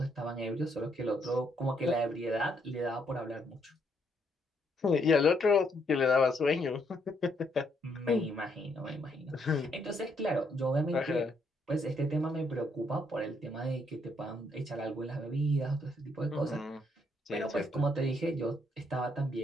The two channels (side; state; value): both; normal; correlation 0.73